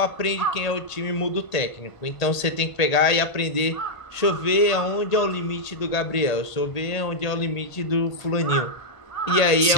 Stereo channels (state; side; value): late; right; 1.8 ms